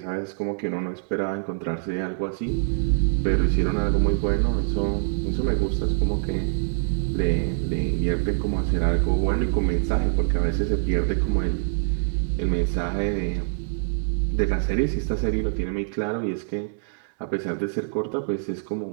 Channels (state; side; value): silent; left; digital silence